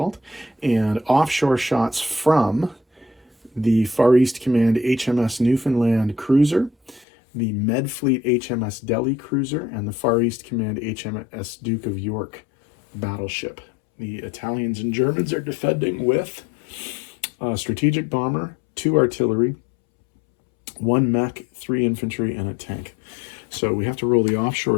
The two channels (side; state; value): right; drops out; at 7.1 s